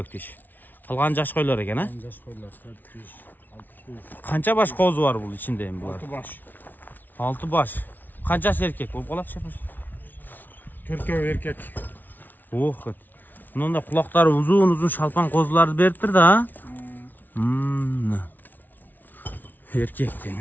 тиш. Калган жаш койлор экен, а? Жаш койлор 4 тиш, 6 тиш. Канча баш козу бар бул ичинде эми булар? 6 баш. 6 баш. Канчасы эркек болуп калат шепеш? 4 эркек. Ох. Мында кулактары узун шалпан козуларды бериптир да, а? Эркек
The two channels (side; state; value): right; late; 0.085 ms